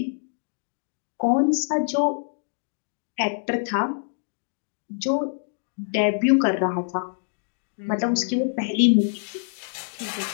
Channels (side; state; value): right; silent; digital silence